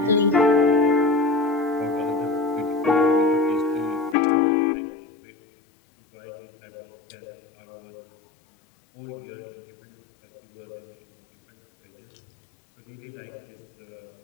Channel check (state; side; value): drops out; right; at 4.2 s